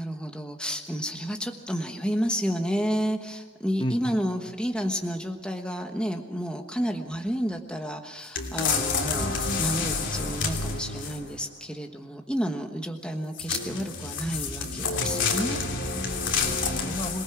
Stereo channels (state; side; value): normal; both; correlation 0.58